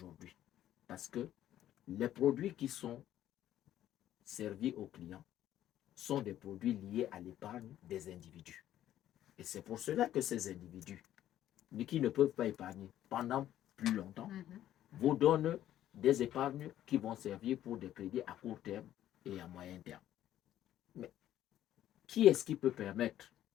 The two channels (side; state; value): right; quieter; 12.3 dB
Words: parce que les produits qui sont servis aux clients sont des produits liés à l'épargne des individus. Et c'est pour cela que ces individus, qui ne peuvent pas épargner pendant plus longtemps, vous donnent des épargnes qui vont servir pour des crédits à court terme et à moyen terme. Mais qui est-ce qui peut permettre